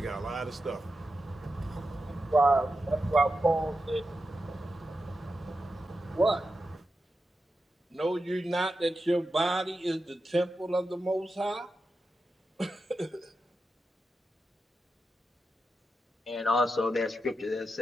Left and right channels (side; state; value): both; normal; correlation 0.89